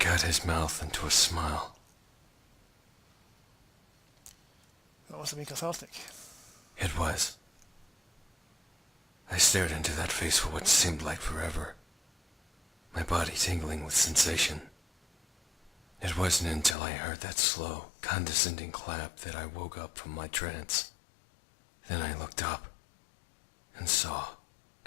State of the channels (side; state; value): right; drops out; at 16.8 s